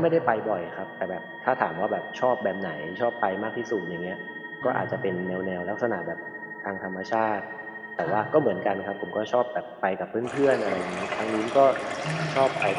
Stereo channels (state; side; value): identical; both; correlation 1.00